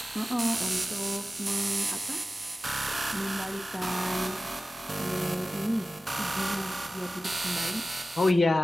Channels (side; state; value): both; normal; correlation 0.95